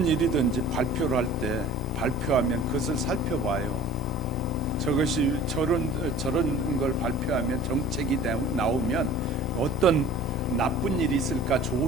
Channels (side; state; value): both; normal; correlation 0.44